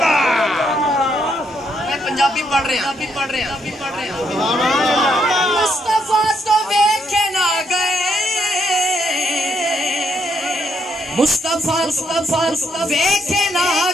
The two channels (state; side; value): normal; both; correlation 0.74